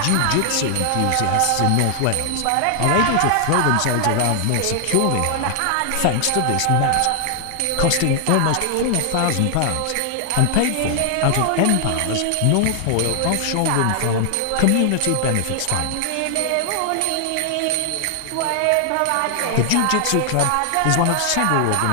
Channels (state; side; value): different; both; correlation 0.00